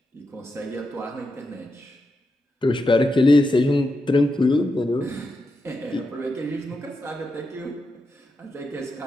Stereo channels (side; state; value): both; normal; correlation 0.86